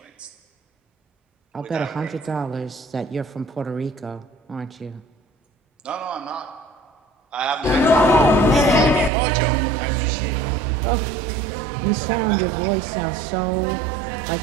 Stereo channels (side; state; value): left; drops out; at 9.1 s